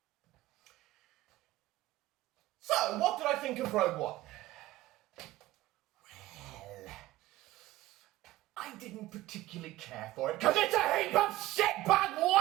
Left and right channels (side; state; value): left; quieter; 16.1 dB